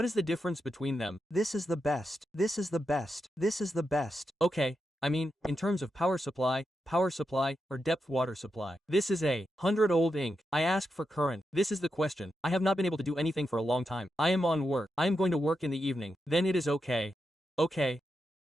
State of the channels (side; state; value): both; normal; correlation 0.86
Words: is the difference between them? This is the best. This is the best. This is the best. Okay, I mean, in terms of power supply, or depth water supply. This is a 100-old ink. I ask for current. This is the question. I have not been able to do anything for a long time. I am on work. I am going to work in the evening. Then it is okay. Okay.